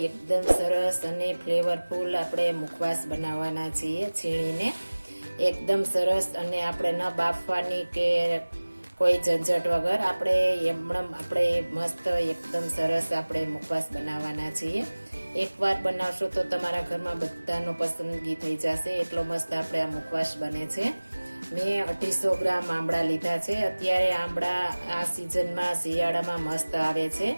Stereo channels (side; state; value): both; inverted; correlation -1.00